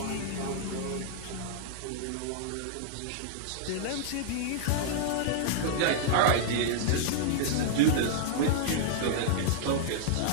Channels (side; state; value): both; different; correlation -0.01